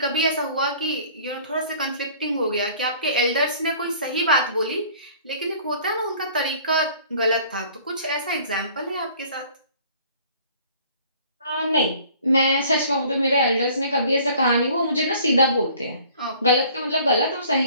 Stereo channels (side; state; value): both; inverted; correlation -0.52